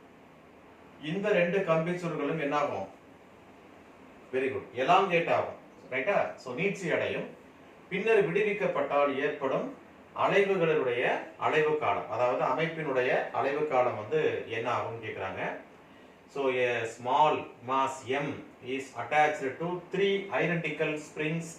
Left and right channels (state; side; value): identical; both; correlation 1.00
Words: இந்த ரெண்டு கம்பி சுருள்களும் என்ன ஆகும்? வெரி குட், எலாங்கேட் ஆகும். ரைட்டா? சோ நீட்சி அடையும். பின்னர் விடுவிக்கப்பட்டால் ஏற்படும் அலைவுகளுடைய அலைவு காலம், அதாவது அமைப்பினுடைய அலைவு காலம் வந்து என்ன ஆகும்னு கேக்குறாங்க. So a small mass M is attached to three identical springs